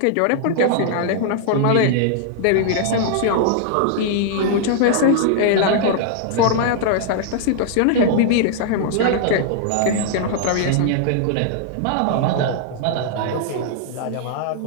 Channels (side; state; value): both; different; correlation -0.01